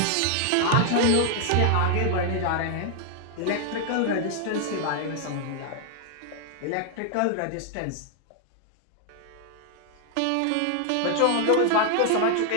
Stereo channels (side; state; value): both; different; correlation 0.00